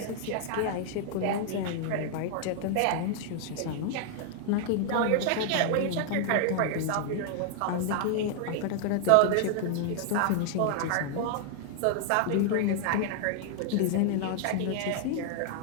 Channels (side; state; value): both; different; correlation 0.00